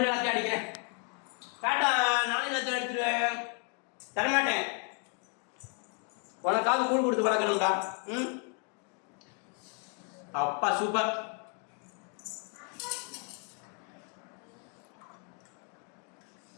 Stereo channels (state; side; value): quieter; right; 35.8 dB